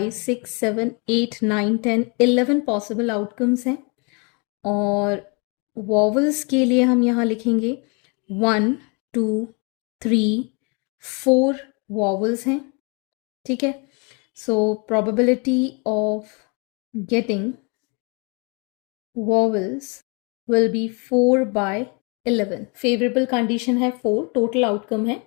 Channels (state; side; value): quieter; right; 32.9 dB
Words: 6 7 8 9 10 11 possible outcomes हैं. और वॉवल्स के लिए हम यहाँ लिखेंगे 1 2 3 4 वॉवल्स हैं. ठीक है, सो probability of getting vowels will be 4 by 11. Favourable condition है 4, टोटल आउटकम है